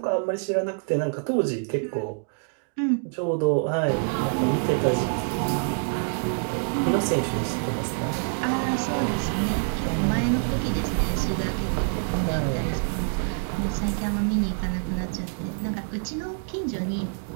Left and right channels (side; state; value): left; silent; 61 dB below the other